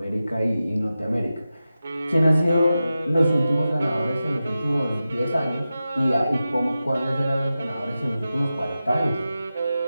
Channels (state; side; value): inverted; both; correlation -0.93